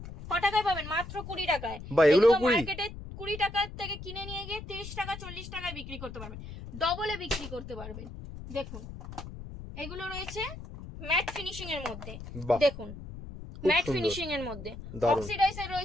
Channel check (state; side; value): noise; left; rumble, 11 dB below the sound